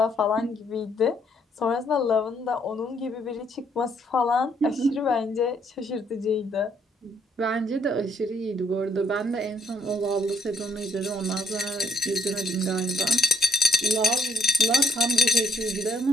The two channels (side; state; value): both; normal; correlation 0.67